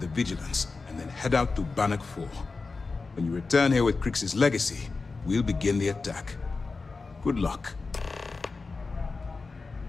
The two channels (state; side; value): quieter; right; 4.1 dB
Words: the Vigilance, and then head out to Bannock 4. When you return here with Crix's legacy, we'll begin the attack. Good luck.